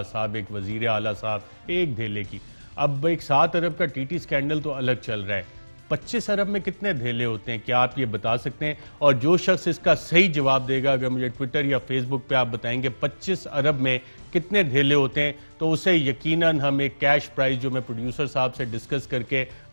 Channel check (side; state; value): both; inverted; correlation -1.00